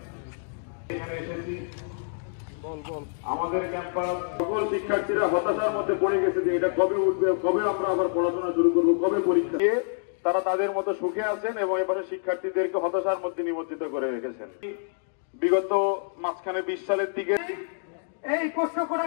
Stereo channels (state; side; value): silent; right; digital silence